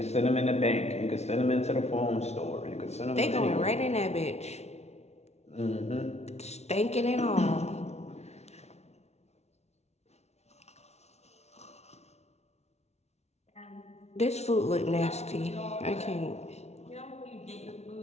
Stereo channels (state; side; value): late; right; 0.31 ms